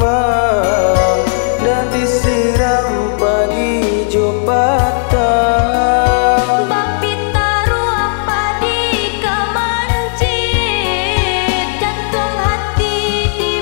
dan disiram pagi jo patang. Bapi taruh apa di kemancit, jantung hati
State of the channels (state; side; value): silent; right; digital silence